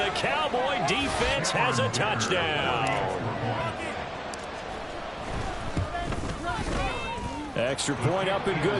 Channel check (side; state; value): both; identical; correlation 1.00